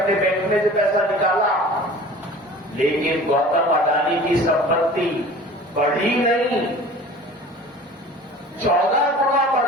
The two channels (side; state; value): both; normal; correlation 0.43